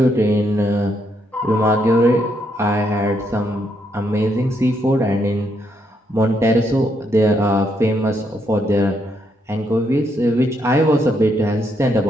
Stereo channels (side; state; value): both; normal; correlation 0.76